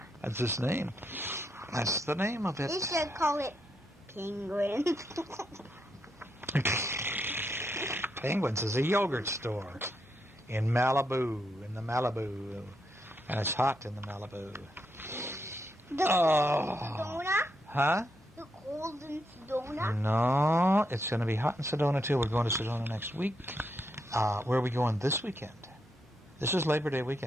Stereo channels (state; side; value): normal; both; correlation 0.80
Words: That's its name. That's the name of it. They should call it Penguin. Penguins is a yogurt store in Malibu, and it's hot in the Malibu. The Sedona? Huh? The cold in Sedona? No, it's going to be hot in Sedona too. We're going to Sedona next week. Where are we going this weekend? This is Labor Day